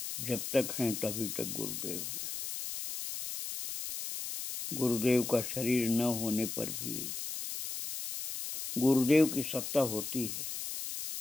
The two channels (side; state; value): left; noise; hiss, 6 dB below the sound